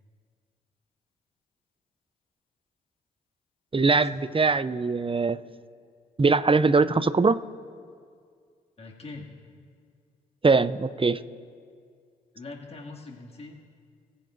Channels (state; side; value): quieter; left; 3.6 dB